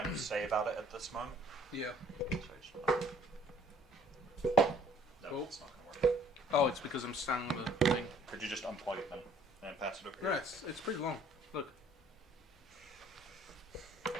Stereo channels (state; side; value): normal; both; correlation 0.58